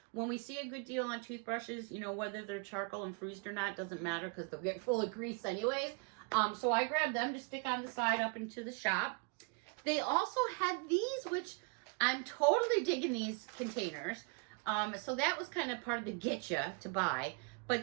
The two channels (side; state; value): left; quieter; 33.7 dB